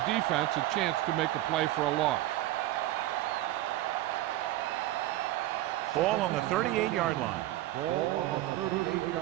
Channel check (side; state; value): left; quieter; 15.5 dB